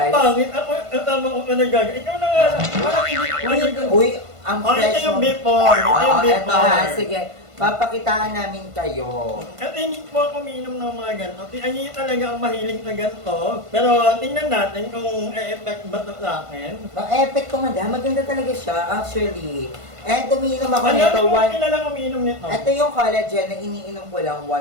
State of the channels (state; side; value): late; left; 1.5 ms